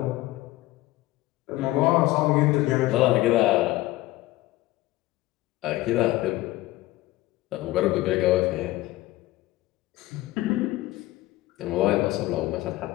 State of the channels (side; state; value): right; quieter; 17.6 dB